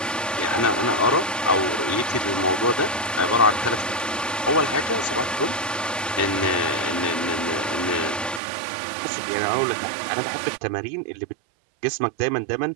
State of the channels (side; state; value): left; drops out; at 8.4 s